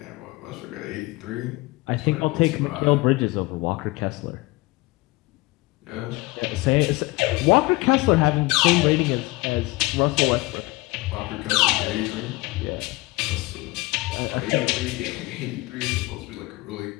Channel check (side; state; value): right; quieter; 21.8 dB